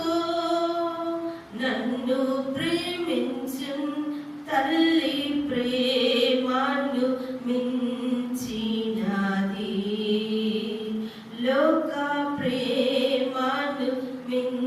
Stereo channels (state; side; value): identical; both; correlation 1.00